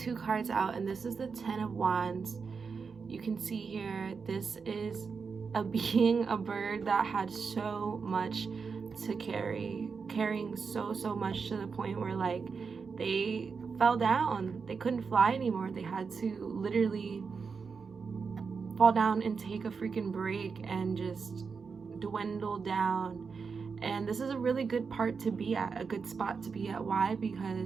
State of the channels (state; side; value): quieter; left; 5.4 dB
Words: cards out, and this is the 10 of Wands. You can see here, this is a being, a bird that had so much to carrying so much to the point where like they fell down, they couldn't fly anymore, they had to literally fall down and take a freaking break and just dwindle down. And this is a really good part to be at, a good spot to be at. Why?